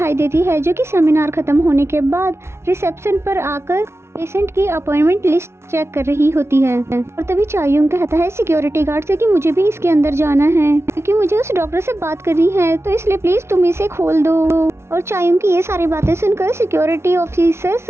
देती है, जो कि सेमिनार खत्म होने के बाद रिसेप्शन पर आकर पेशेंट की अपॉइंटमेंट लिस्ट चेक कर रही होती है। और तभी चायुंग कहता है सिक्योरिटी गार्ड से कि मुझे भी इसके अंदर जाना है क्योंकि मुझे उस डॉक्टर से बात करनी है, तो इसलिए प्लीज तुम इसे खोल दो। और चायुंग की ये सारी बातें सुनकर सिक्योरिटी ऑफिसर्स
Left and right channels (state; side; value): late; left; 0.13 ms